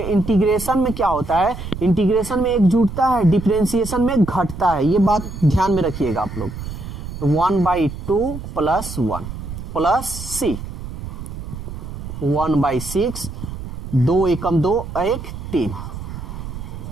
इंटीग्रेशन में क्या होता है, इंटीग्रेशन में एक जुटता है, डिफरेंशिएशन में घटता है, ये बात ध्यान में रखिएगा आप लोग। 1/2 + 1 प्लस c 1/6, 2 एकम 2 1 3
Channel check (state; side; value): noise; right; rumble, 9 dB below the sound